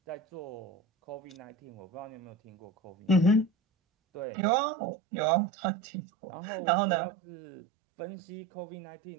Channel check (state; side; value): drops out; left; at 4.2 s